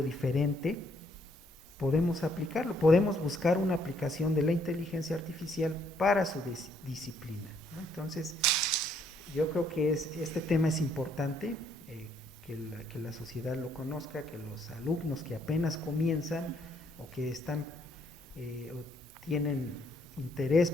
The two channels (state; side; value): normal; both; correlation 0.68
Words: diferente, podemos aplicarlo, podemos buscar una aplicación de la inteligencia artificial para su disciplina, ¿no? Entonces, yo creo que este tema es importante, que la sociedad lo conozca, que los alumnos que apenas comienzan o que están o tienen interés